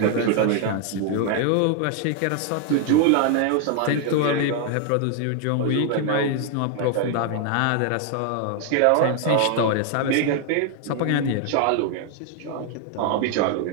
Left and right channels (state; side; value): different; both; correlation 0.00